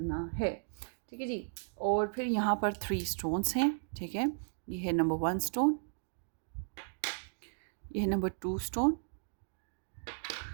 है। ठीक है जी। और फिर यहाँ पर 3 स्टोन्स हैं। ठीक है, ये है नंबर 1 स्टोन, ये है नंबर 2 स्टोन,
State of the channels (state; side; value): silent; left; digital silence